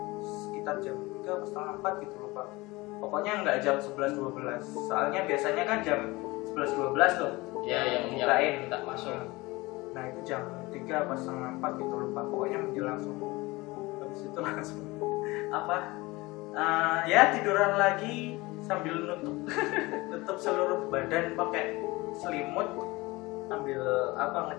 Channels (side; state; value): right; quieter; 22.0 dB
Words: sekitar jam 3 atau setengah 4 gitu lupa. Pokoknya nggak jam 11-12, soalnya biasanya kan jam 11-12 tuh ya yang bukain. minta masuk. Nah itu jam 3 apa setengah 4 gitu lupa, pokoknya menjelang subuh. Habis itu langsung ya tiduran lagi sambil nutup seluruh badan pakai selimut, sambil